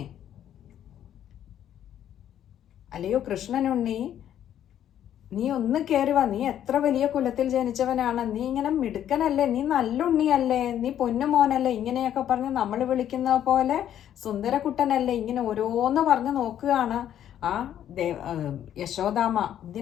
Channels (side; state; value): right; quieter; 10.6 dB